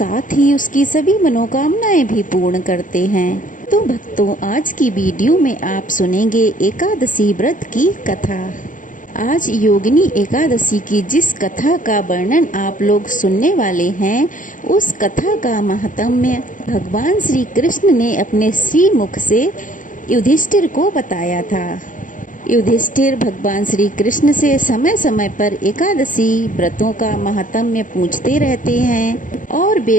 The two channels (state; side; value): late; right; 0.38 ms